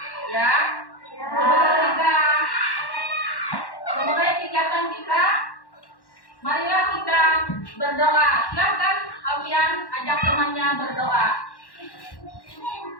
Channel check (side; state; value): right; late; 1.1 ms